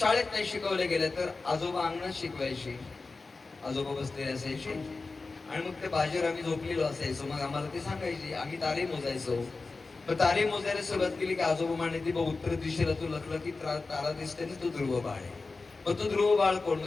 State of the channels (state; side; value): quieter; right; 3.8 dB